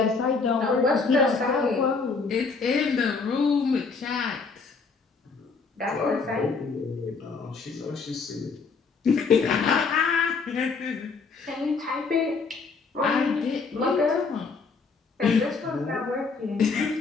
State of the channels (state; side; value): quieter; right; 4.7 dB